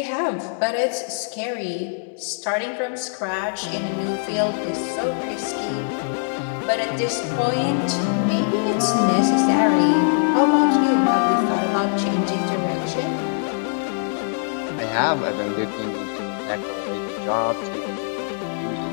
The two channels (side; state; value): right; silent; digital silence